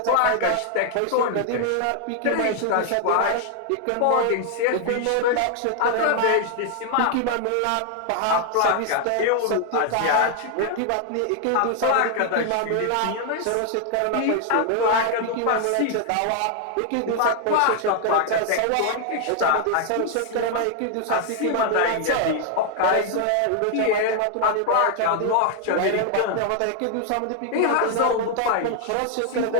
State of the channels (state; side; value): different; both; correlation 0.00